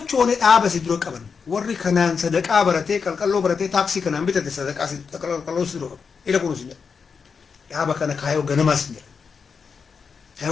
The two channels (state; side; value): quieter; right; 5.7 dB